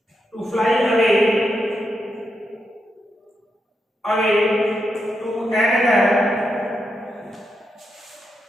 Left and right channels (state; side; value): normal; both; correlation 0.84